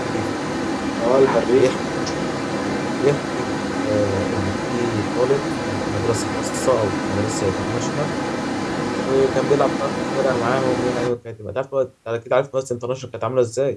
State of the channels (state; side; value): identical; both; correlation 1.00